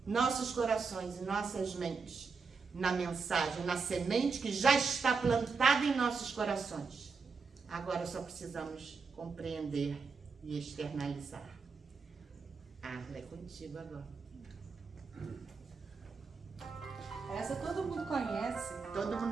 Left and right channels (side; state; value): left; quieter; 5.0 dB